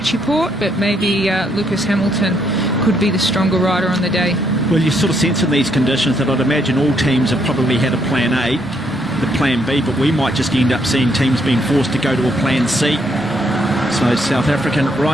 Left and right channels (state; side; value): normal; both; correlation 0.72